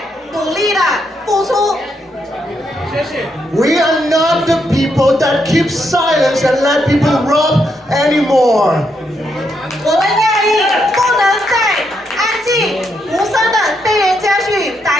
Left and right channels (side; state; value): both; normal; correlation 0.79